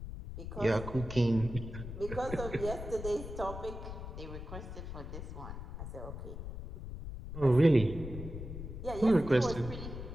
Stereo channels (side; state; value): left; noise; rumble, 8 dB below the sound